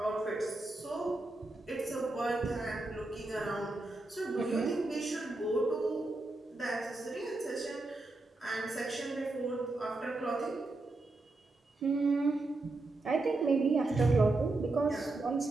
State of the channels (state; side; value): quieter; left; 3.0 dB